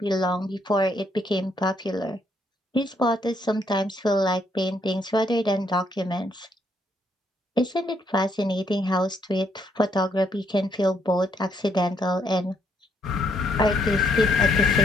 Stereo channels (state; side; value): normal; both; correlation 0.72